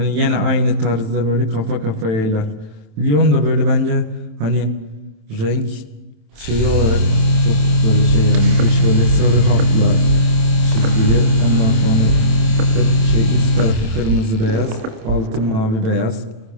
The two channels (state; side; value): late; left; 27 ms